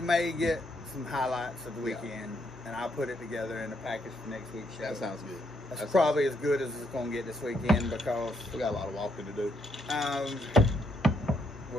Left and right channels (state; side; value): normal; both; correlation 0.75